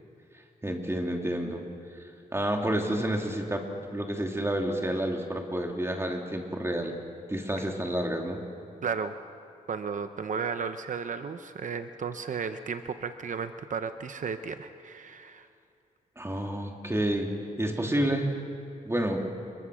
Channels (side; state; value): both; normal; correlation 0.70